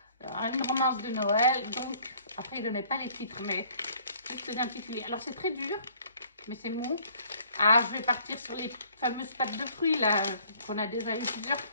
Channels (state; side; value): inverted; both; correlation -0.58